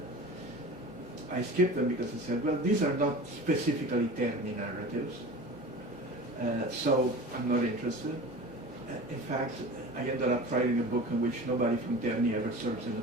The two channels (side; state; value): both; normal; correlation 0.36